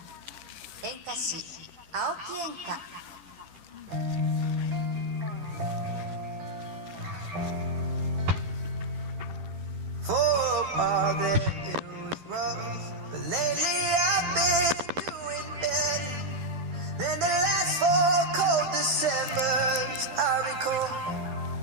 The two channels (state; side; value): late; left; 10 ms